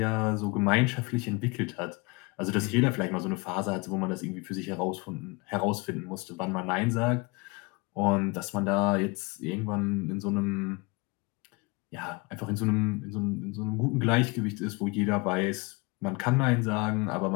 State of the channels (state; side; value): quieter; right; 27.3 dB